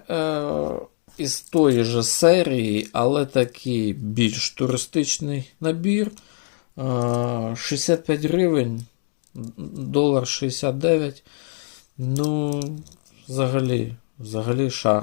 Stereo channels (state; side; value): silent; right; 58 dB below the other